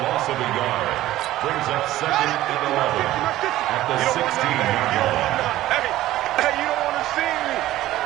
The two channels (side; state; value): left; quieter; 15.0 dB